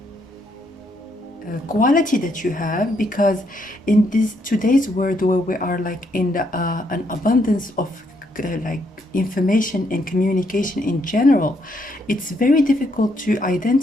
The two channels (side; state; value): both; normal; correlation 0.74